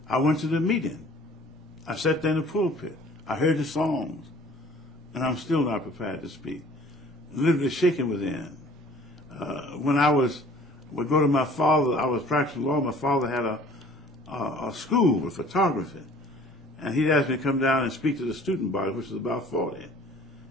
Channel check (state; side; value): normal; both; correlation 0.51